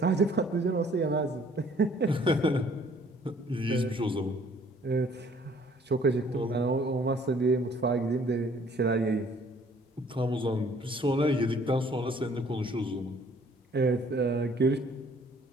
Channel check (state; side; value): normal; both; correlation 0.58